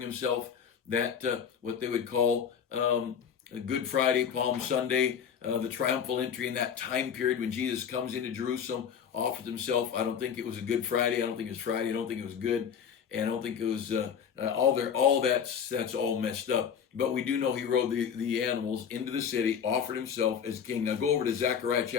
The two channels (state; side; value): quieter; right; 7.6 dB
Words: that, what they would call Good Friday, Palm Sunday, the triumphal entry in that time period when Jesus comes into Jerusalem, offers himself. I don't think it was a Good Friday. I don't think it was Friday. I don't think it was good. and I don't think it was all that's all messed up. But we do know he rode the animals into the city, offered himself as king. Now go over to Zechariah